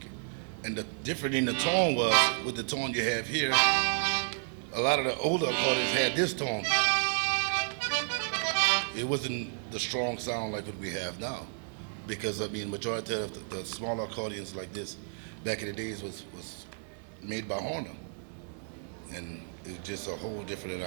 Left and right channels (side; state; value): left; silent; 57 dB below the other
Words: And the difference in the tone was with the tone you have here. A lot of the older accordions had this tone. It wasn't the strong sound like what we have now, because I mean, majority of the smaller accordions like this back in the days was made by Horner, and it was just a whole different and